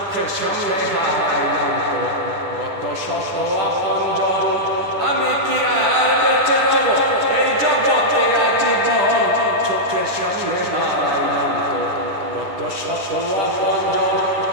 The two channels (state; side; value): late; left; 10 ms